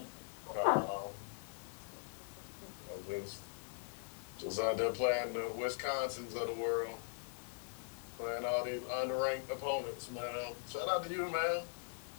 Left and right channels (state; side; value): silent; right; digital silence